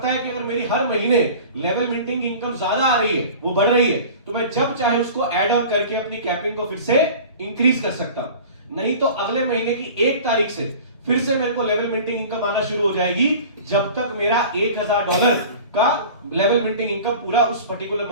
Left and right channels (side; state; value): both; inverted; correlation -0.40